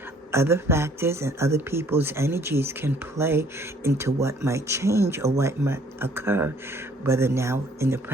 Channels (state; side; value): normal; both; correlation 0.60